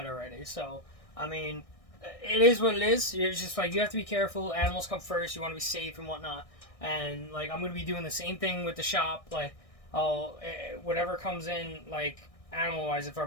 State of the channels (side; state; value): right; late; 1.6 ms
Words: already. So, I mean, it is what it is. It's just, like, you have to be careful. Animals come first. You want to be safe and whatnot. And, like, I'm going to be doing the same thing with the shop. Like, whatever comes in, like, animal-wise, if